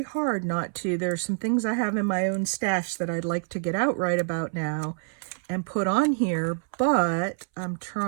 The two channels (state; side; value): silent; left; 60 dB below the other